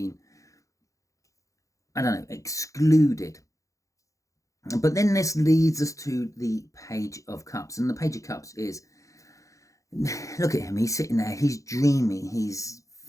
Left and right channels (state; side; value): late; right; 0.16 ms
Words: I don't know, excluded. But then this leads us to the Page of Cups. And the Page of Cups is, look at him. He's sitting there. He's dreaming. He's